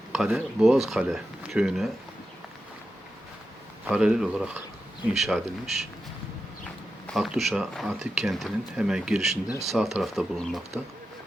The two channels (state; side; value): normal; both; correlation 0.90